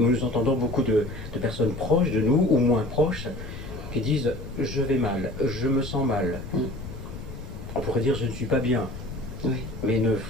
entendons beaucoup de personnes proches de nous, ou moins proches, qui disent « je vais mal, je me sens mal ». On pourrait dire « je ne suis pas bien ». Oui. Mais ne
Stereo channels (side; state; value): left; noise; rumble, 11 dB below the sound